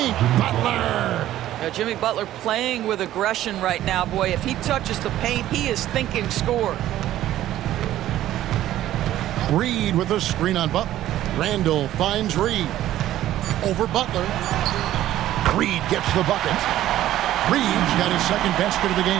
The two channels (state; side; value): quieter; left; 13.4 dB